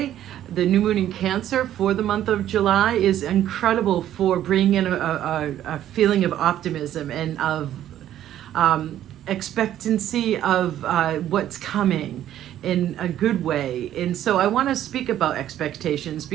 the new moon in Cancer for the month of July is incredible for bringing in a feeling of optimism and of expectancy of what's coming in a good way. And so I want to speak about expectations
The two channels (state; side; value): quieter; left; 11.8 dB